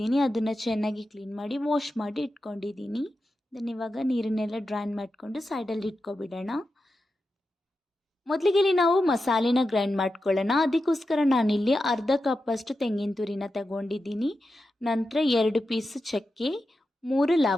ಅದನ್ನು ಚೆನ್ನಾಗಿ ಕ್ಲೀನ್ ಮಾಡಿ ವಾಶ್ ಮಾಡಿ ಇಟ್ಕೊಂಡಿದ್ದೀನಿ. ಇದನ್ನು ಇವಾಗ ನೀರನ್ನೆಲ್ಲ ಡ್ರೈನ್ ಮಾಡಿಕೊಂಡು ಸೈಡಲ್ಲಿ ಇಟ್ಕೊಬಿಡೋಣ. ಮೊದಲಿಗೆ ನಾವು ಮಸಾಲೆನ ಗ್ರೈಂಡ್ ಮಾಡ್ಕೊಳ್ಳೋಣ. ಅದಕ್ಕೋಸ್ಕರ ನಾನಿಲ್ಲಿ ಅರ್ಧ ಕಪ್ಪಷ್ಟು ತೆಂಗಿನ ತುರಿನ ತಗೊಂಡಿದ್ದೀನಿ. ನಂತರ 2 ಪೀಸ್ ಚಕ್ಕೆ, 3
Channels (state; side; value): normal; both; correlation 0.90